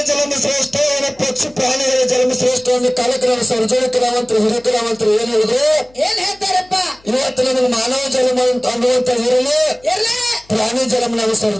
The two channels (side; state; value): left; noise; hum, 29 dB below the sound